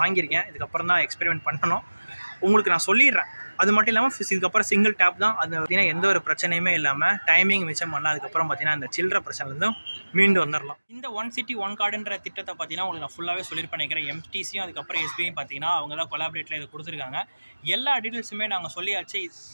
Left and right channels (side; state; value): both; inverted; correlation -1.00